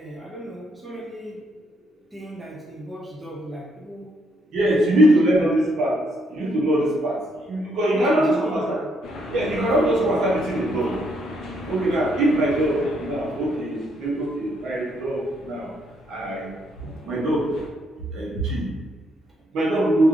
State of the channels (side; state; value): both; normal; correlation 0.74